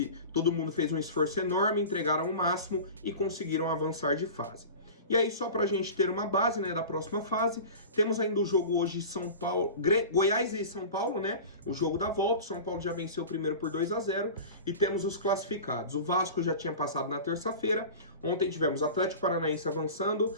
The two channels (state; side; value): inverted; both; correlation -0.34